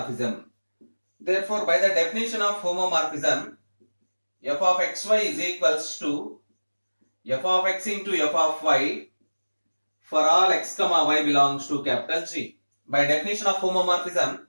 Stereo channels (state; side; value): inverted; both; correlation -1.00